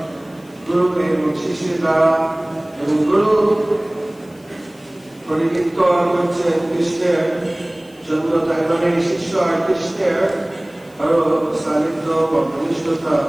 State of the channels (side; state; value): left; noise; hiss, 29 dB below the sound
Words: গুরু এবং শিষ্যের দ্বারা। এবং গুরু পরিকীর্তন করছেন কৃষ্ণের জন্য, তাই মানে শিষ্য আর কৃষ্ণের আরো সান্নিধ্য বা ঘনিষ্ঠতা